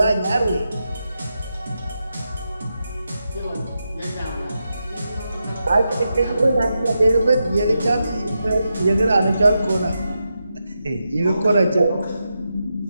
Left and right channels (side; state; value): both; inverted; correlation -0.87